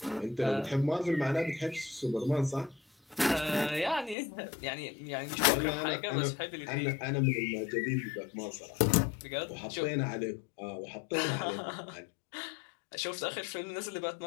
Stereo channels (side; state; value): right; drops out; at 4.2 s